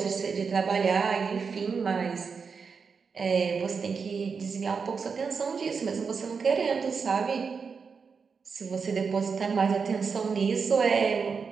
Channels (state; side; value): quieter; left; 5.5 dB